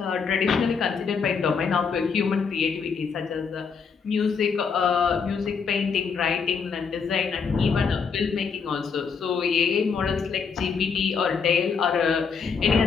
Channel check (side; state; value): right; quieter; 5.8 dB